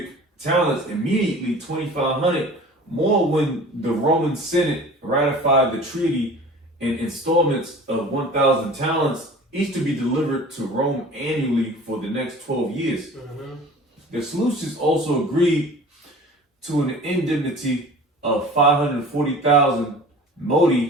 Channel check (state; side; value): normal; both; correlation 0.42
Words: talents immediately, 2,500 more when the Roman Senate ratified the treaty in installments of 1,000 talents, each to be delivered to Rome annually for the next 12 years. The Seleucids also agreed to an indemnity of 540,000